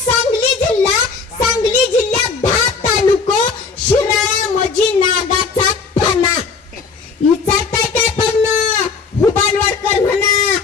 सांगली जिल्ह्यात 10 तालुको, शिराळा मजी नागाचा फणा. विचारताय काय पण हुबानवाडकर म्हणा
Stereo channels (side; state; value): right; quieter; 5.0 dB